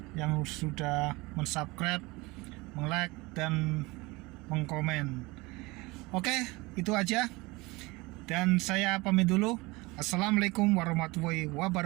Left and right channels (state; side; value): quieter; left; 23.3 dB